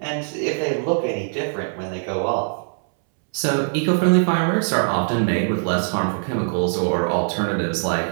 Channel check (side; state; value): left; silent; 64 dB below the other